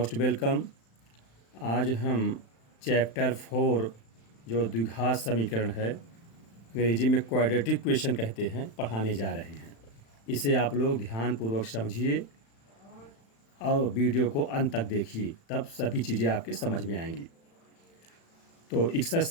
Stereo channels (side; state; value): right; late; 35 ms